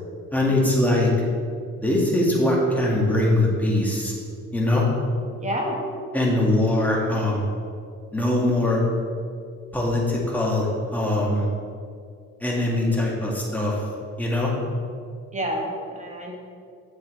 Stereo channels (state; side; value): normal; both; correlation 0.57